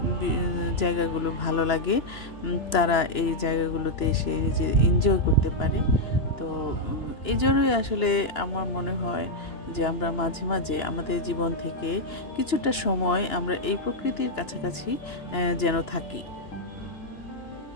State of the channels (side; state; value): right; late; 3.0 ms